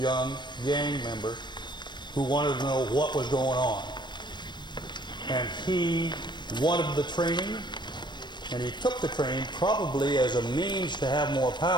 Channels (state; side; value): late; right; 0.22 ms